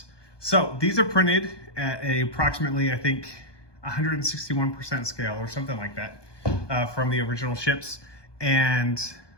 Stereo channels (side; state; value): right; late; 1.2 ms